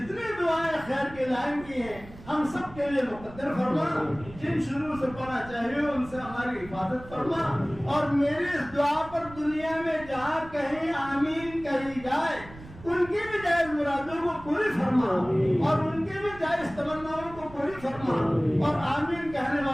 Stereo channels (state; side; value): noise; right; rumble, 18 dB below the sound